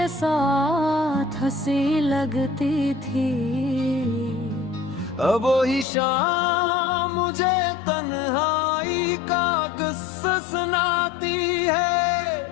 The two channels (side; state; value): right; drops out; at 5.9 s